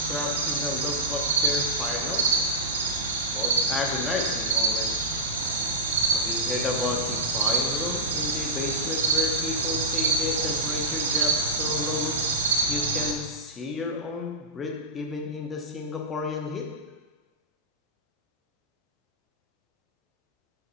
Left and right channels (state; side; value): normal; both; correlation -0.13